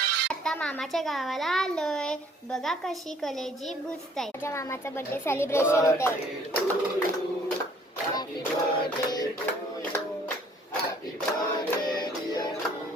आता मामाच्या गावाला आलोय. बघा कशी कलेजी बुजताय. माझ्या मामाचा बर्थडे सेलिब्रेशन होत आहे. Happy birthday to you, happy birthday dear you,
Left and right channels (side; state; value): both; normal; correlation 0.59